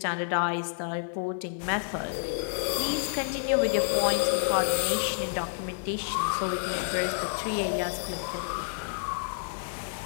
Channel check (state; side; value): silent; right; digital silence